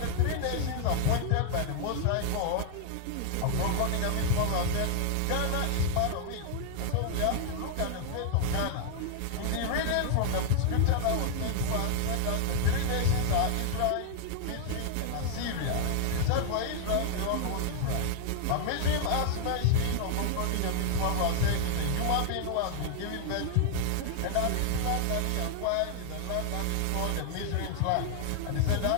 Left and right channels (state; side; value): different; both; correlation 0.00